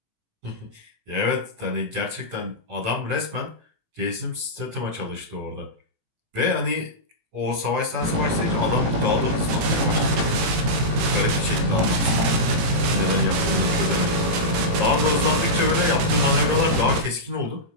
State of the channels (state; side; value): late; left; 18 ms